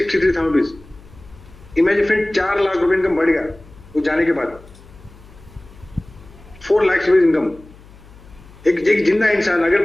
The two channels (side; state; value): left; noise; hum, 23 dB below the sound